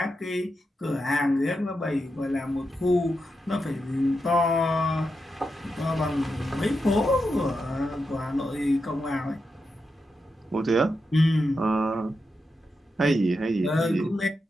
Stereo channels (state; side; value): normal; both; correlation 0.87